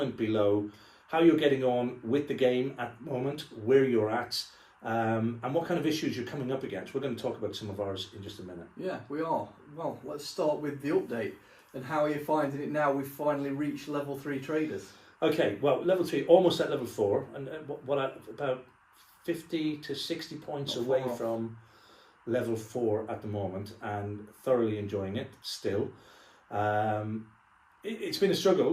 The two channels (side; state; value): both; identical; correlation 1.00